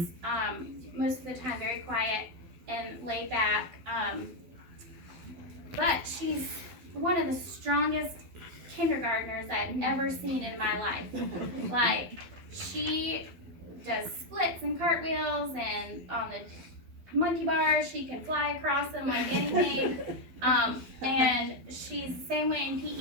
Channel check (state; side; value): late; left; 12 ms